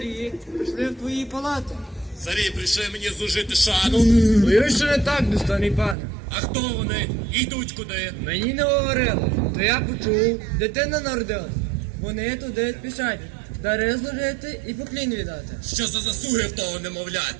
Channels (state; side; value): drops out; left; at 6.0 s